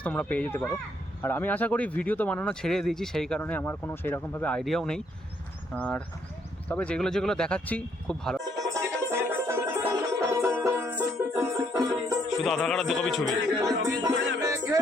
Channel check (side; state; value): both; normal; correlation 0.70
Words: তোমরা পেয়ে যেতে পারো। আর আমি আশা করি ভিডিও তো বানানো ছেড়ে দিয়েছি, সেই কারণে আমার কোনো সেইরকমভাবে আইডিয়াও নেই। আর তবে যেগুলো যেগুলো দেখাচ্ছি খুব ভালো। শুধু আধার কার্ড আর 2 কপি ছবি।